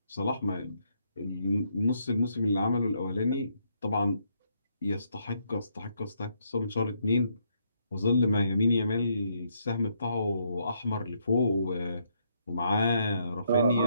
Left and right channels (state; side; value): inverted; both; correlation -0.74